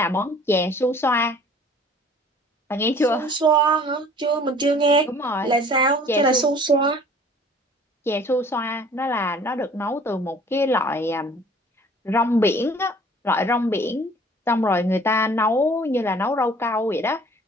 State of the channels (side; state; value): both; normal; correlation 0.52